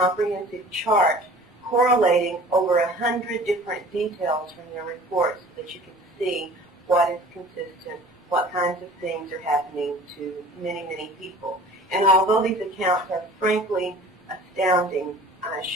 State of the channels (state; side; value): normal; both; correlation 0.46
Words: chart correlating over 100 different details from their reports so that you can see what is consistent, what kinds of things are happening to many, many people. And although these accounts are frankly astounding, I